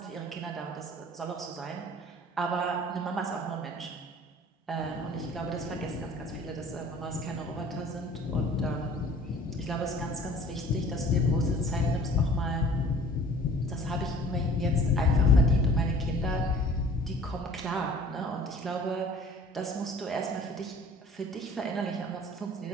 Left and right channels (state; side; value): normal; both; correlation 0.49